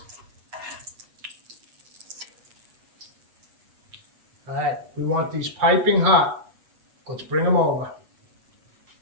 All right, we want these piping hot. Let's bring them over.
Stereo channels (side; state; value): left; late; 8.3 ms